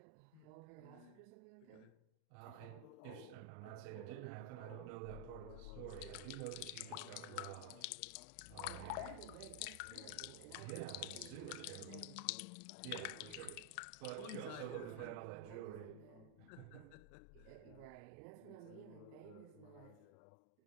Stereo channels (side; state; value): both; different; correlation 0.00